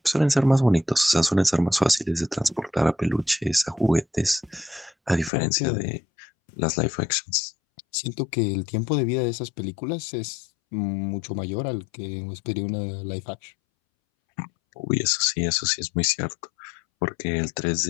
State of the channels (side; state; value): right; drops out; at 5.3 s